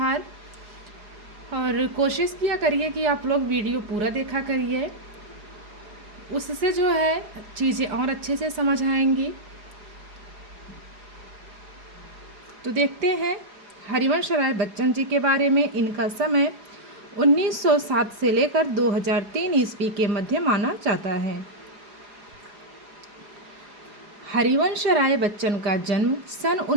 और कोशिश किया करिए कि आप लोग वीडियो पूरा देखा करिए, उससे जो है चीज़ें और अच्छे से समझ आएंगी। तो देखते हैं हरिवंश राय बच्चन जी के बारे में। इनका समय 1907 से लेकर 2003 ईस्वी के मध्य माना जाता है। हरिवंश राय बच्चन का जन्म सन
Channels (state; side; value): late; left; 4.8 ms